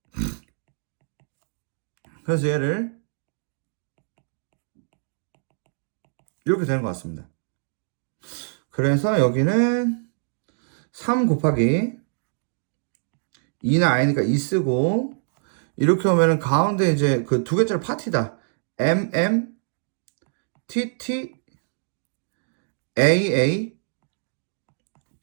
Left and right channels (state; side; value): silent; left; digital silence